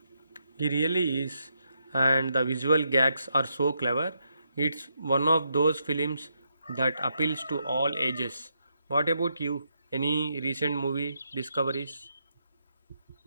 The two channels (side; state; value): both; inverted; correlation -0.80